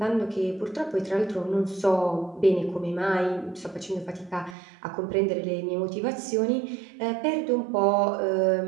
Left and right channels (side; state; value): left; drops out; at 4.5 s